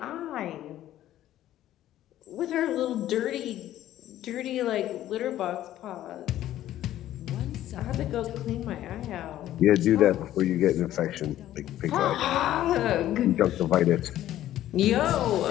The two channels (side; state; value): right; quieter; 13.1 dB